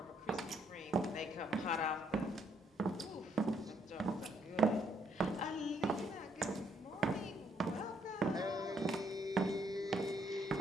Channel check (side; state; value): both; normal; correlation 0.70